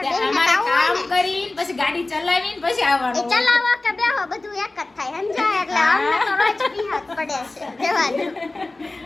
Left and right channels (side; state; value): right; quieter; 3.0 dB